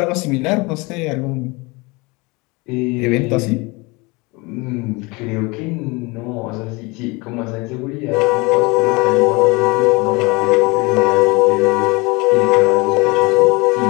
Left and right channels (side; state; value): right; quieter; 26.0 dB